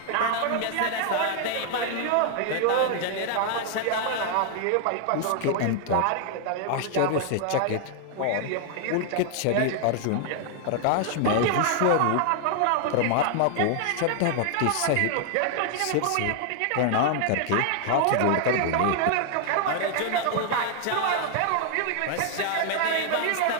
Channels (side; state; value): both; different; correlation 0.00